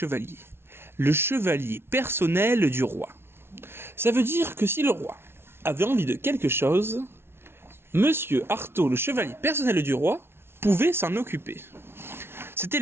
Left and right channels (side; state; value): left; late; 0.12 ms